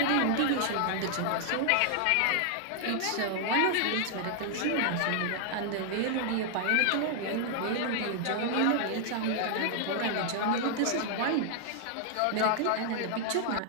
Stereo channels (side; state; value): both; different; correlation 0.00